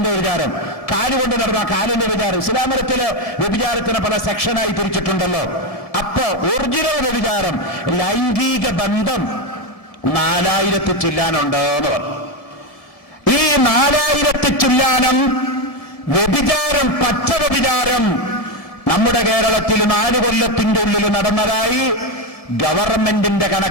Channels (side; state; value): right; late; 1.8 ms